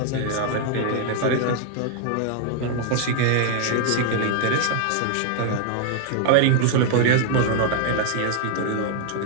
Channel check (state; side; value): different; both; correlation 0.00